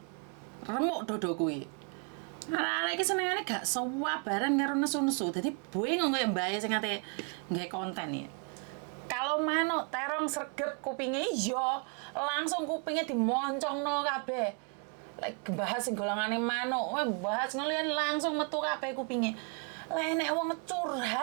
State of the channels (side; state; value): left; quieter; 37.9 dB